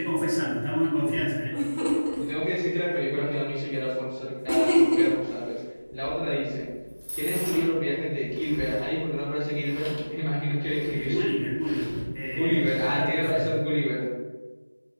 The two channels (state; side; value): inverted; both; correlation -1.00